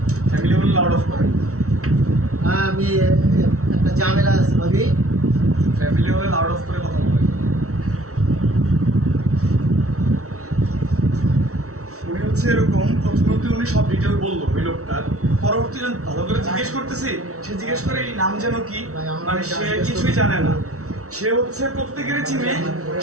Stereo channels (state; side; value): late; left; 0.64 ms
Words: family বলে লাউড অফ করেন। হ্যাঁ আমি একটা ঝামেলা আছে ভাবি। ফ্যামিলি হলে লাউড অফ করে কথা বলেন। উনি হচ্ছে এরকম, প্রথমত উনি সব ডিটেল বললো ওই লোকটার, পরবর্তীতে ভালো করে জিজ্ঞেস করতেছি, সে জিজ্ঞেস করে এই নাম যেন কি, মানে সে কিছুই জানে না। সে হচ্ছে প্রত্যেকেরই চিনে,